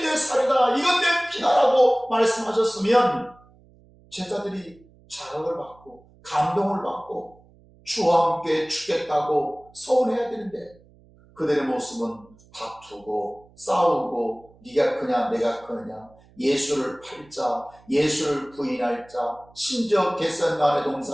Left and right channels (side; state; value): right; noise; hum, 28 dB below the sound